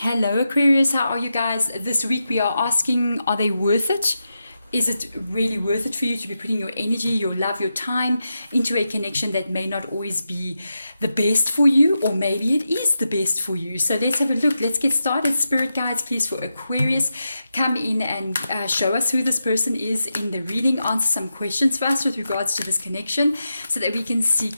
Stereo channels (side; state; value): both; inverted; correlation -0.88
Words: Aquarius, how are you guys? This week we are asking, are they worth it? Is it really worth it for you to be putting your energy, your love, your time into a connection that may not always be the best for you, or maybe it is the best for you? So let's have a look. Let's get started. Spirit guides, please, for Aquarius, come in and show us who this person is in the reading. Answer some questions for us with regards to this connection so that we can see